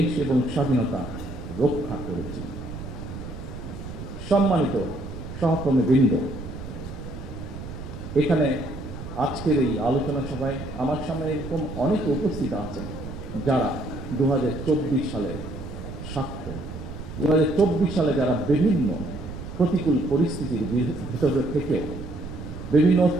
এবং স্বাধীনতা রক্ষা করেছি। সম্মানিত সহকর্মীবৃন্দ, এখানে আজকের এই আলোচনা সভায় আমার সামনে এরকম অনেকে উপস্থিত আছেন যারা 2024 সালের সাক্ষ্য। 2024 সালে যারা বিভিন্ন প্রতিকূল পরিস্থিতির ভিতরে থেকেও, বিভিন্ন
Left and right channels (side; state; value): right; noise; rumble, 10 dB below the sound